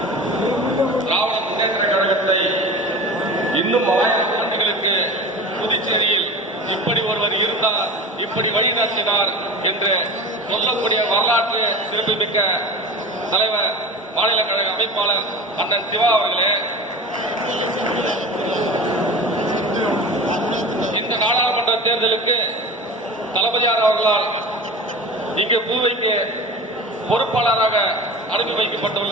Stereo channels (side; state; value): both; normal; correlation 0.32